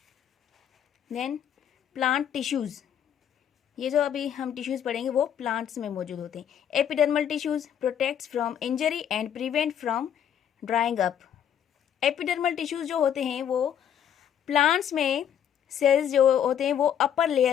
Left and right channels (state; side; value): quieter; right; 9.3 dB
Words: देन प्लांट टिश्यूज़, ये जो अभी हम टिश्यूज़ पढ़ेंगे वो प्लांट्स में मौजूद होते हैं। Epidermal tissues protects from injury and prevent from drawing up. Epidermal tissues जो होते हैं वो प्लांट्स में सेल्स जो होते हैं वो अपर